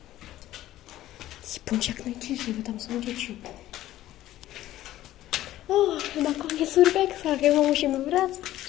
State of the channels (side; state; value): right; quieter; 14.3 dB